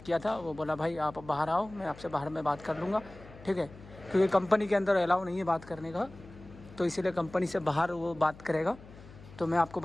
किया था, वो बोला भाई आप बाहर आओ, मैं आपसे बाहर में बात कर लूँगा, ठीक है, क्योंकि कंपनी के अंदर अलाउ नहीं है बात करने का, तो इसीलिए कंपनी से बाहर वो बात करेगा। तो मैं आपको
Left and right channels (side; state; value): left; noise; hum, 19 dB below the sound